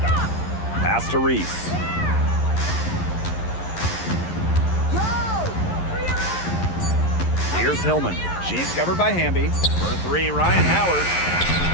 Pass to Reese. Here's Hillman. She's covered by Hamby. For 3, Ryan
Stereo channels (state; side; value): late; right; 11 ms